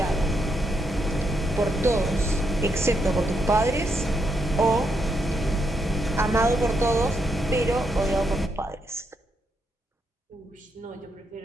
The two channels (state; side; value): normal; both; correlation 0.79